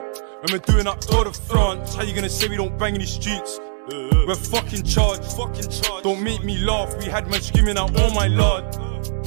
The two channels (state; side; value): silent; left; digital silence